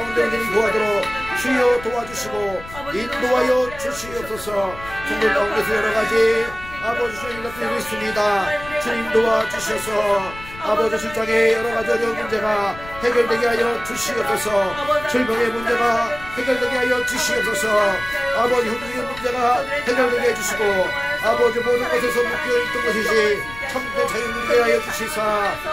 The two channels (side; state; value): left; noise; rumble, 16 dB below the sound